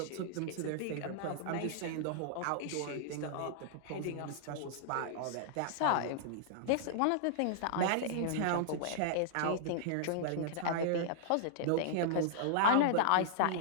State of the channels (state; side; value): different; both; correlation -0.01